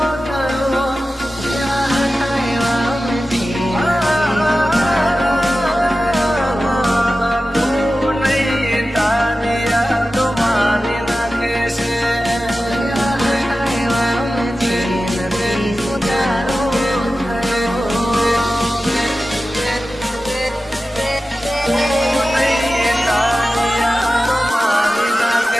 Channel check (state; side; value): normal; both; correlation 0.94